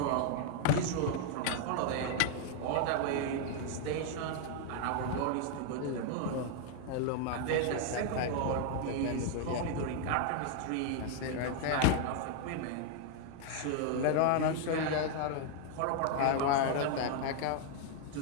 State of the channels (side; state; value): both; different; correlation 0.00